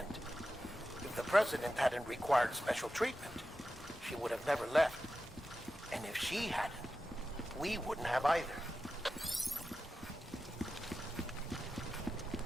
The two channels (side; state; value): both; normal; correlation 0.92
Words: If the President hadn't required special treatment, she would have never left. And if she hadn't, we wouldn't have either.